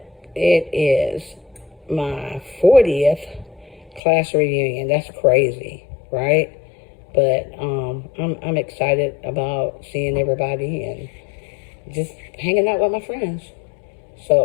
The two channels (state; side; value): drops out; right; at 4.0 s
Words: it is my 40th class reunion. That's crazy, right? But I'm excited about seeing everybody and just hanging out with my friends.